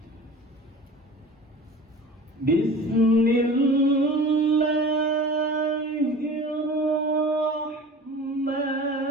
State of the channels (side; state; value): both; normal; correlation 0.39